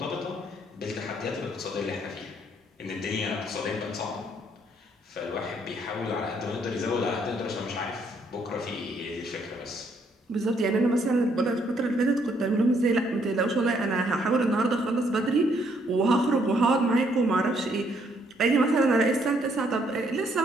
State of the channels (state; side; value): normal; both; correlation 0.69